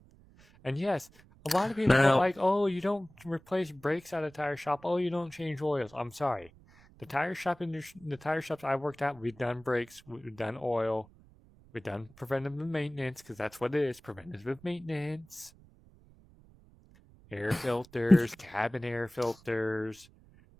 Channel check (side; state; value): right; noise; rumble, 26 dB below the sound